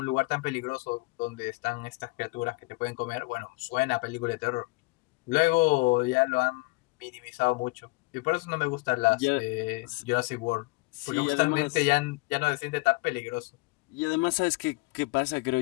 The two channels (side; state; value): right; quieter; 25.5 dB